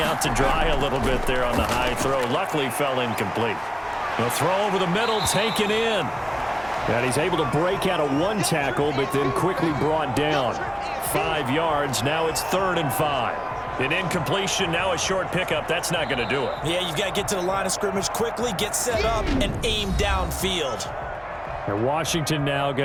out to dry a little bit there on the high throw. Luckily fell incomplete. The throw over the middle, taken in. And he's able to break out of one tackle, but then quickly brought down. 5 yards, now it's 3rd and 5. An incompletion, now a short pickup. That's not going to do it. Yeah, you've got to get to the line of scrimmage quickly, get set up, and aim downfield. And Washington now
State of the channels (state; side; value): identical; both; correlation 1.00